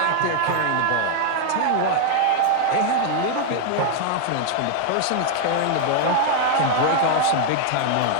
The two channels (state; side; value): different; both; correlation 0.00